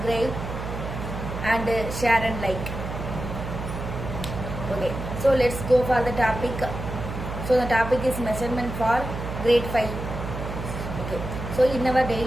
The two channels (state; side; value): noise; right; hum, 6 dB below the sound